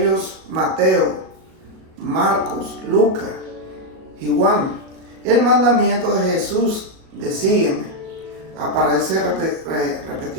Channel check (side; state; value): left; late; 37 ms